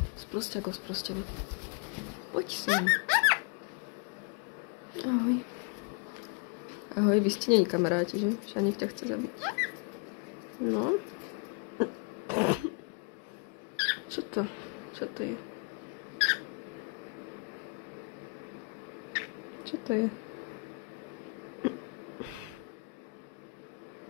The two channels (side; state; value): right; quieter; 33.4 dB